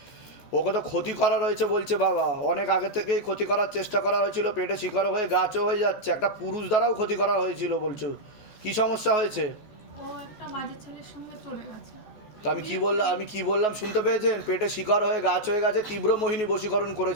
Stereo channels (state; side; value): late; right; 14 ms